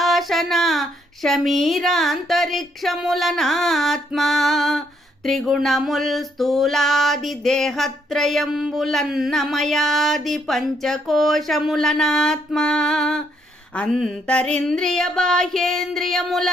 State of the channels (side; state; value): both; normal; correlation 0.72